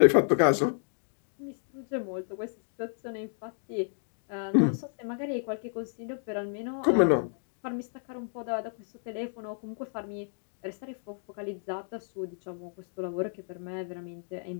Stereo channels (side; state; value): right; silent; digital silence